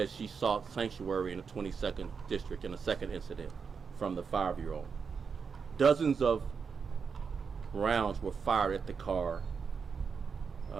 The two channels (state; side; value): quieter; left; 5.8 dB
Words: she sought sanctuary in the 22nd District in a second incident from the 5-year-old. Dozens of rounds were fired at the car